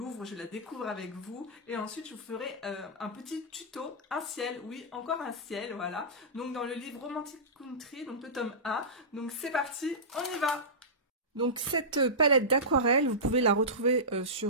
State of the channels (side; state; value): both; normal; correlation -0.18